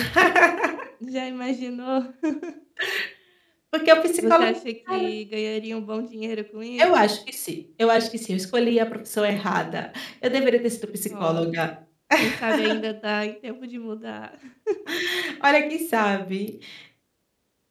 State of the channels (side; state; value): both; identical; correlation 1.00